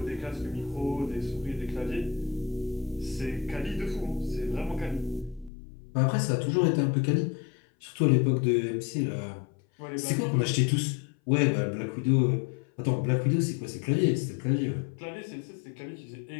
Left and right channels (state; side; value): drops out; right; at 5.5 s